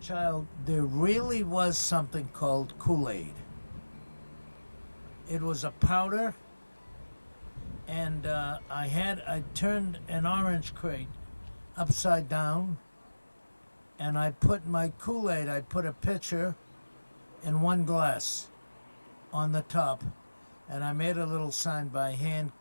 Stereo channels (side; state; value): both; inverted; correlation -1.00